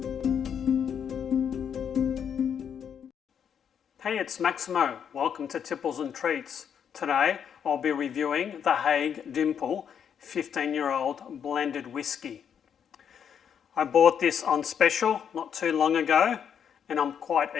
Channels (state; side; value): quieter; right; 8.0 dB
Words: Hey, it's Maximo. Welcome to Tipples and Treats. Today I'll be reviewing the Haig Dimple 15-year-old blended whisky. I bought this on special not too long ago and I'm quite